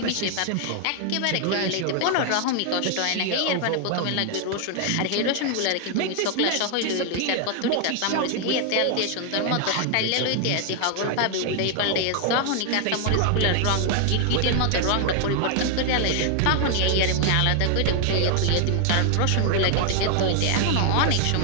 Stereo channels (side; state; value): both; different; correlation 0.00